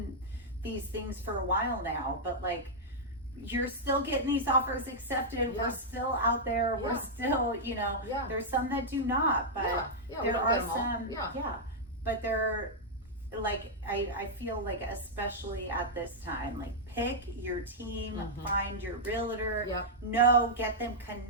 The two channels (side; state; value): both; normal; correlation -0.07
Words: these things for a while now, but like, you're still getting these offers accepted. We're still out there. We're still, there's some that do not, but there are some, but they're, like, I feel like, especially at this time, like, pick your team, find your realtor, get them